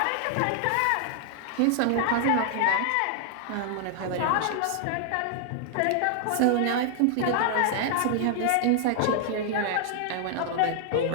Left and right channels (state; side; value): different; both; correlation 0.00